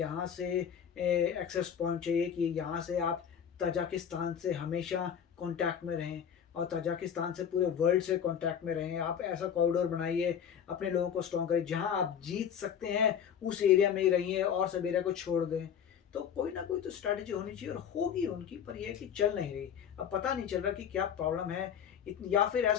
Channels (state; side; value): quieter; right; 8.3 dB